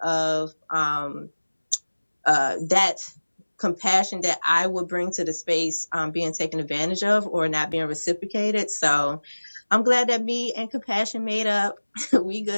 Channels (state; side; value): inverted; both; correlation -1.00